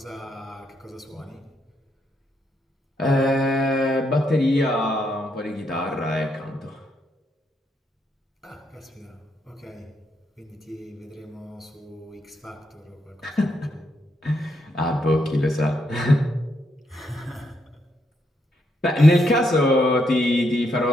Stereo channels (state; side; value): normal; both; correlation 0.78